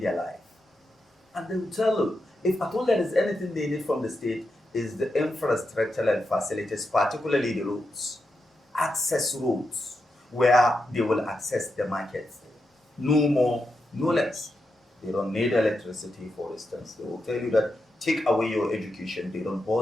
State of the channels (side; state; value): both; normal; correlation 0.87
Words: life. And they will tell you, if at all there is anything they need from the state, is the infrastructural facilities, particularly the roads, access roads, where they will access the markets. No more, no less. They don't need electricity, for instance. They will tell you that take away your education. They don't